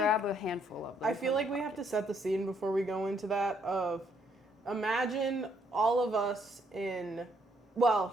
a handful of them. I feel like we have to set the scene before we go into that of imagine all of us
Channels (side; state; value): both; normal; correlation 0.70